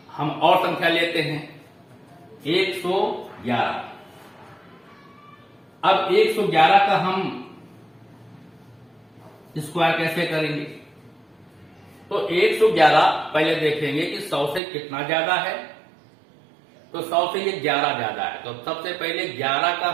हम और संख्या लेते हैं 111। अब 111 का हम स्क्वायर कैसे करेंगे? तो 111 पहले देखेंगे कि 100 से कितना ज्यादा है। तो 100 से ये 11 ज्यादा है, तो सबसे पहले 11 का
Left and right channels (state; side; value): drops out; left; at 14.6 s